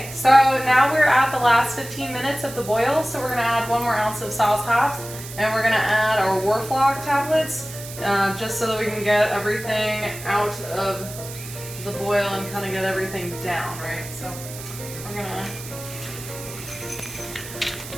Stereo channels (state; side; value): noise; right; hiss, 13 dB below the sound